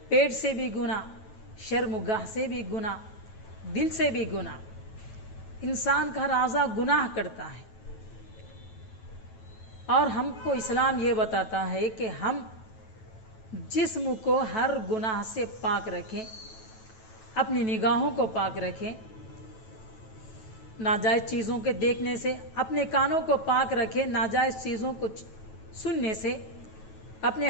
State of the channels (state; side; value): late; right; 9.2 ms